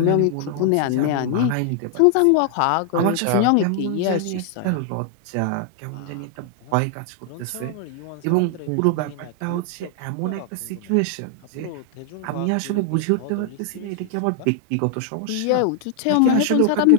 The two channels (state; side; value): different; both; correlation 0.00